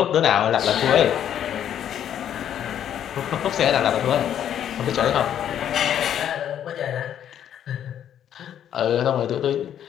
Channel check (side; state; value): right; quieter; 10.0 dB